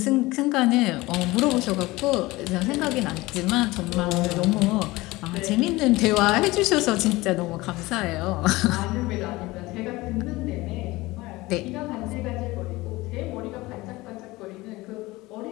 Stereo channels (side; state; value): right; quieter; 20.4 dB